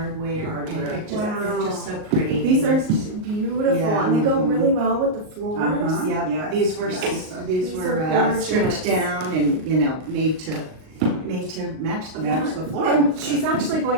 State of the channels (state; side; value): late; left; 38 ms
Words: And it just, it's just so pretty. These are beautiful, Yeah. and they go really well with the floors. Yep. Yeah. These were These were are stripped gorgeous. down and made to match the floor. And she's actually